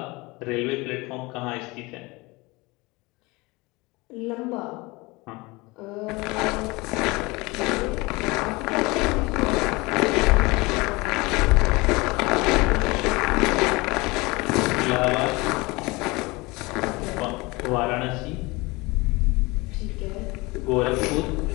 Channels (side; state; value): right; quieter; 23.9 dB